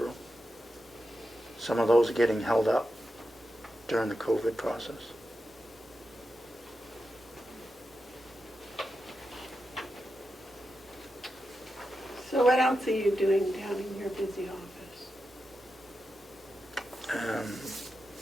Some of those are getting held up during the COVID process. So what else are you doing down in your busy office?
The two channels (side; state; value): both; normal; correlation 0.89